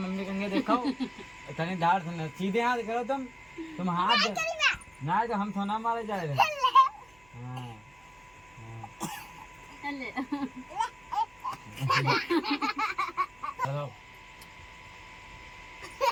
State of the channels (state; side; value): noise; right; hum, 29 dB below the sound